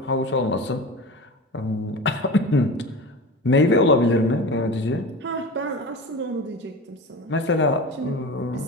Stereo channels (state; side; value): normal; both; correlation 0.31